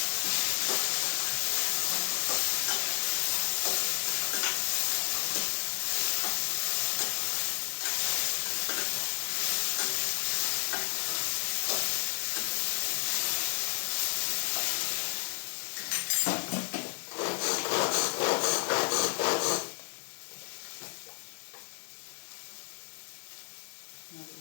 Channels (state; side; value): silent; right; 57 dB below the other